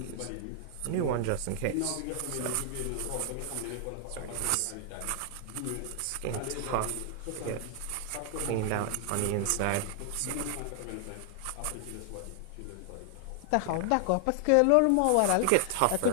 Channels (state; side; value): different; both; correlation 0.00